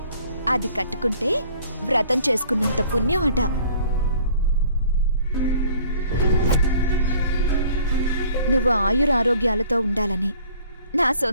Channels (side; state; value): both; inverted; correlation -0.53